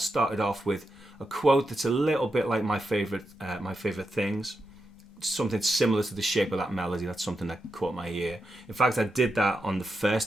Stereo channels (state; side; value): normal; both; correlation 0.87